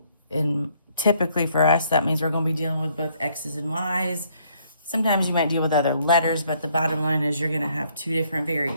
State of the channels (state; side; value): inverted; both; correlation -0.67